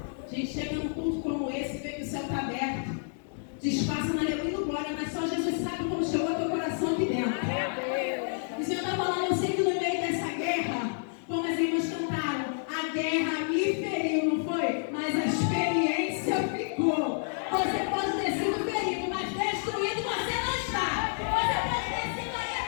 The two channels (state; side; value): silent; right; digital silence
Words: A gente chega num culto como esse e vê que o céu está aberto, disfarça na aleluia do glória, mas só Jesus sabe como chegou ao teu coração aqui dentro. O Senhor está falando, eu sei que no meio dessa guerra, como as irmãs cantaram, a guerra me feriu, não foi? Mas a experiência ficou. Você pode ter sido ferido, mas destruído você não está. Você pode ter sido aí